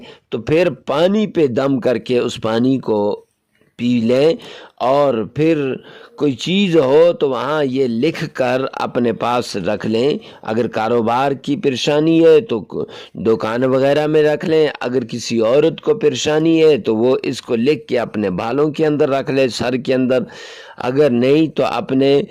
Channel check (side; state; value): both; identical; correlation 1.00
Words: तो फिर पानी पे दम करके उस पानी को पी लें, और फिर कोई चीज़ हो तो वहाँ ये लिख कर अपने पास रख लें। अगर कारोबार की परेशानी है तो दुकान वगैरह में रख लें। अगर किसी औरत को परेशानी है तो वो इसको लिख के अपने बालों के अंदर रख ले, सर के अंदर। अगर नहीं तो अपने